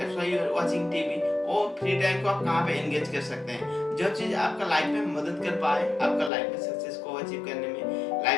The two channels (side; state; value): right; drops out; at 6.3 s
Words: why you are watching TV. और फ्री टाइम को आप कहाँ पे एंगेज कर सकते हैं, जो चीज आपका लाइफ में मदद कर पाए, आपका लाइफ में सक्सेस को अचीव करने में,